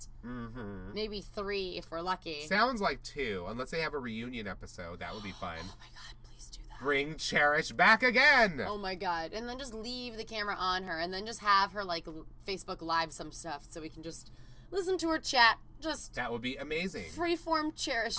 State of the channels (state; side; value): identical; both; correlation 1.00